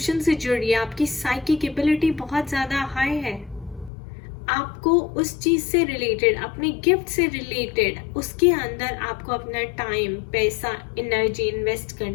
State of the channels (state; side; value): drops out; right; at 3.9 s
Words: से जुड़िए, आपकी साइकिक एबिलिटी बहुत ज्यादा हाई है। आपको उस चीज से रिलेटेड, अपने गिफ्ट से रिलेटेड, उसके अंदर आपको अपना टाइम, पैसा, एनर्जी इन्वेस्ट